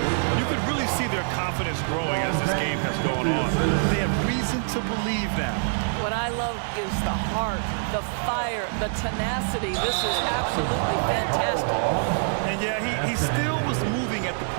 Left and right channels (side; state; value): left; silent; digital silence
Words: You can really see their confidence growing as this game has gone on. They have reason to believe now. What I love is the heart, the fire, the tenacity. This is absolutely fantastic. And yeah, he still was moving at the